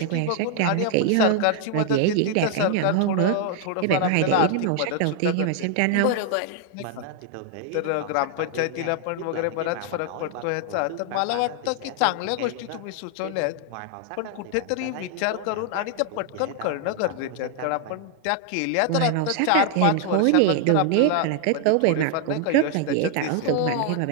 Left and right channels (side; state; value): both; different; correlation 0.00